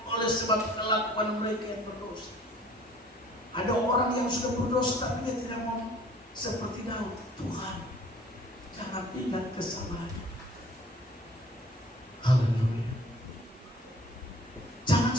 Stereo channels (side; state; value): both; normal; correlation 0.52